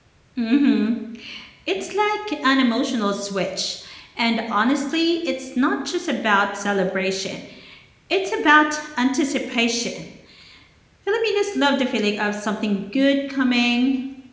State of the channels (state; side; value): identical; both; correlation 1.00